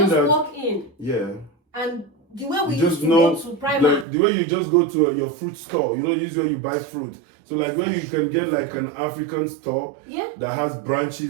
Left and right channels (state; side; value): drops out; left; at 4.0 s